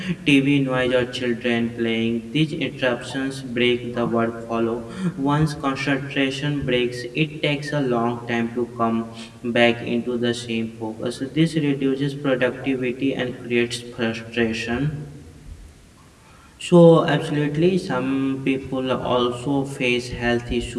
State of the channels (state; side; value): identical; both; correlation 1.00